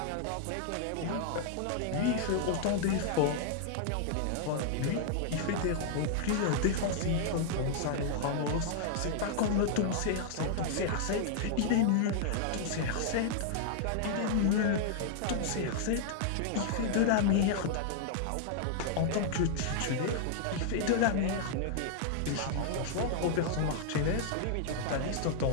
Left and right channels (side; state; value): both; different; correlation -0.01